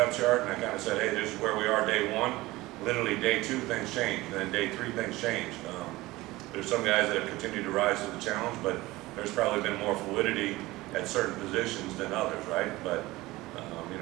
chart, and I kind of said, hey, this is where we are day one. Literally day two, things change, and then day three, things change. There's some guys that have continued to rise to the challenge, but there's probably been more fluidity at certain positions than others, right? But you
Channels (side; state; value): left; quieter; 19.3 dB